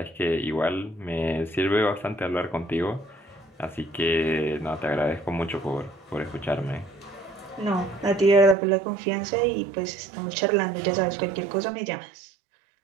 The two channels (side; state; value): left; drops out; at 8.6 s